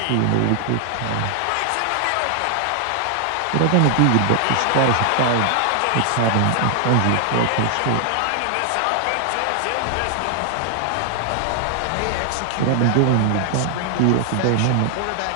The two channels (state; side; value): different; both; correlation 0.00